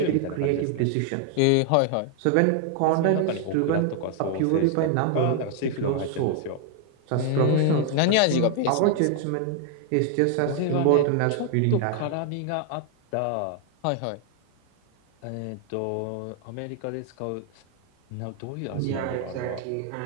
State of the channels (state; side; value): different; both; correlation 0.00